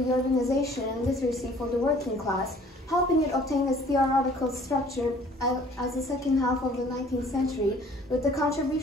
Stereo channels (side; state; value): both; normal; correlation 0.54